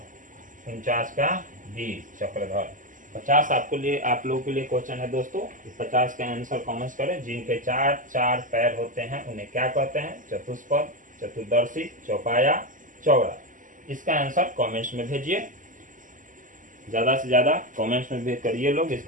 49 का डी, चक्रधर। 50 आप लोगों के लिए क्वेश्चन है दोस्तों। 50 का आंसर कमेंट करें। जिनके चार चार पैर होते हैं उन्हें क्या कहते हैं? चतुष्पद, चतुर्दर्शी, चौपाया, चौड़ा। इसका आंसर कमेंट्स में भेजिए, ज्यादा से ज्यादा कमेंट्स में भेज करिए लोग,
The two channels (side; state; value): left; late; 0.38 ms